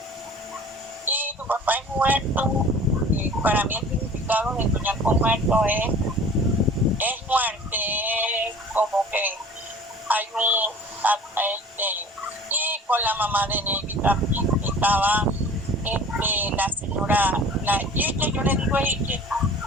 y tu papá es muerto. Y para mí el significado de soñar con muerto es muerte, es como que hay y con la mamá de Neidy también estaba la señora, la Iche, yo le digo Iche,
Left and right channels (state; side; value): normal; both; correlation 0.45